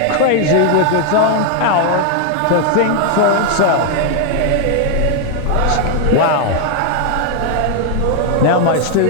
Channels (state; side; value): different; both; correlation 0.01